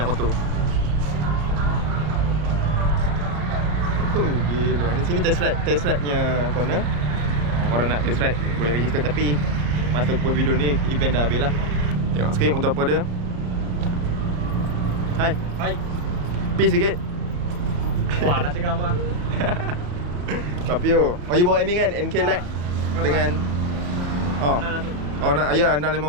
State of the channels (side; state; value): left; late; 34 ms